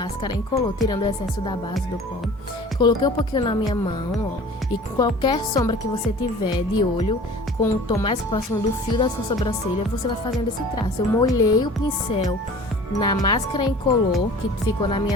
incolor, tirando o excesso da base do pó. Coloquei um pouquinho na minha mão, ó. E qualquer sombra que você tiver de olho, com o tom mais próximo do fio da sua sobrancelha, você vai fazendo esse traço. Eu molhei o pincel na máscara incolor, que ficou na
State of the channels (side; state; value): both; normal; correlation 0.44